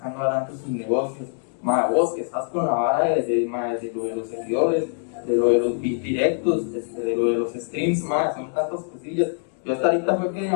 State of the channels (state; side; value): silent; right; digital silence